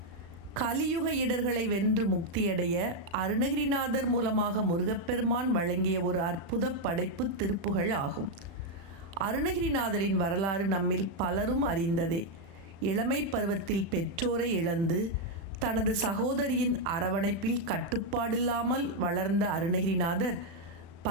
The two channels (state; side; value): late; left; 36 ms